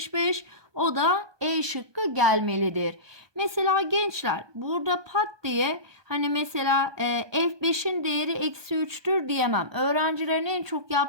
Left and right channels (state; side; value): late; left; 1.2 ms